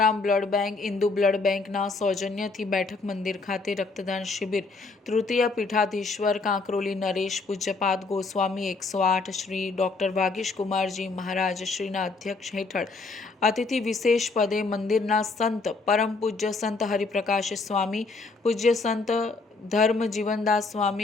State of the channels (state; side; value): quieter; right; 3.9 dB